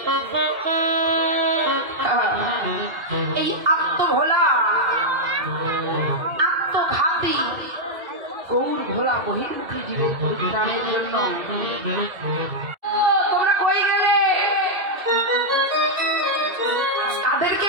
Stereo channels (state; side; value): late; left; 2.7 ms